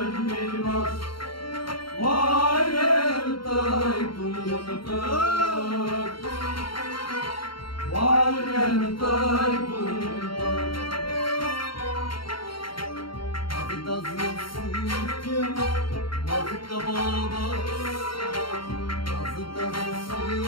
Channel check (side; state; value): right; late; 0.73 ms